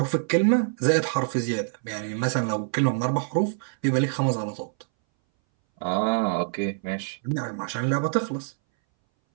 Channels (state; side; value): silent; left; 60 dB below the other